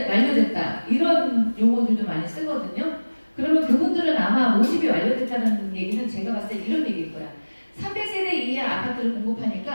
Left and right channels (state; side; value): inverted; both; correlation -1.00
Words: 이런 용어들도 많이 쓰거든요. 그러면 그분들은 아마 모집이 완료됐다는 얘기는 제가 봤을 때 이런 얘기일 거야. 300세대 이하 아파트를